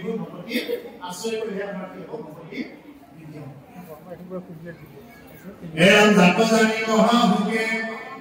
ভকতি আশ্ৰয় কৰিলে আমাৰ কি হ'ব, ভকতি বৃদ্ধি হ'ব। এৰম জাত জানি মহাভোগে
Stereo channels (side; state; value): both; identical; correlation 1.00